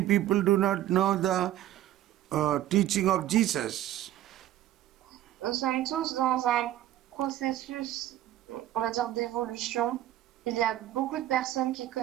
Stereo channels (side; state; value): left; quieter; 13.1 dB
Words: people do not know the teaching of Jesus. Nous sommes tous dans un processus, on va dire, d'évolution. Il y a beaucoup de personnes qui ne